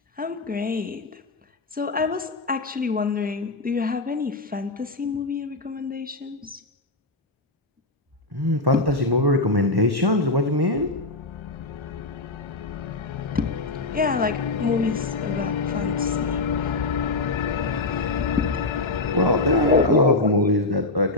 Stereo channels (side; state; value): right; quieter; 3.1 dB